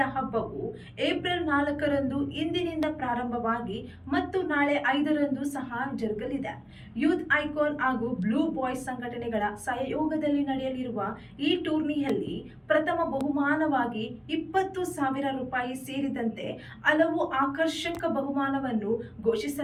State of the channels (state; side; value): identical; both; correlation 1.00